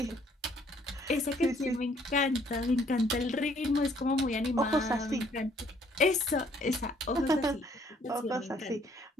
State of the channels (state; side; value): normal; both; correlation 0.64